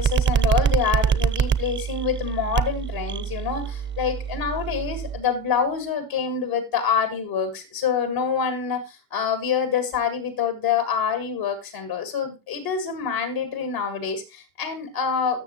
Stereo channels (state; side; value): normal; both; correlation 0.18